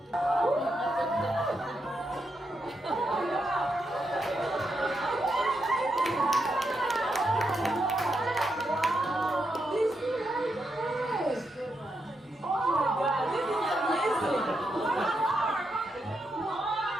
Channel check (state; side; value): normal; both; correlation 0.83